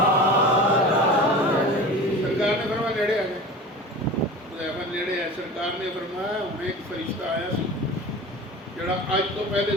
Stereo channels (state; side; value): normal; both; correlation 0.34